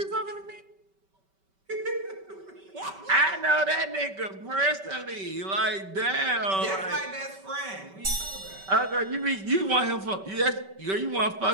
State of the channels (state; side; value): late; left; 5.2 ms